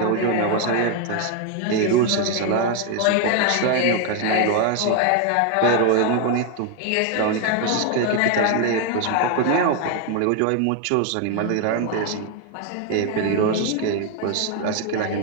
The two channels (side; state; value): both; different; correlation 0.01